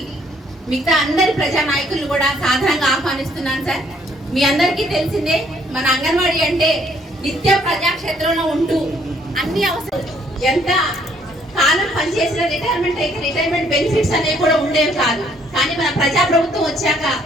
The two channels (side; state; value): both; normal; correlation 0.65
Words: మిగతా అందరి ప్రజా నాయకులు కూడా సాధారణంగా ఆహ్వానిస్తున్నాను సార్. మీ అందరికీ తెలిసిందే, మన అంగన్వాడీ అంటే నిత్యం ప్రజాక్షేత్రంలో ఉంటూ అన్ని అవసరం ఎంత కాలం పనిచేసిన రిటైర్మెంట్ అయితే రిటైర్మెంట్ బెనిఫిట్స్ అనేవి కూడా ఉండేవి కాదు. కానీ మన ప్రజాప్రభుత్వం వచ్చాక